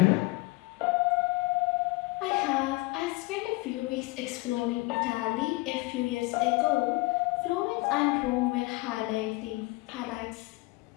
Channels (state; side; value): quieter; right; 23.5 dB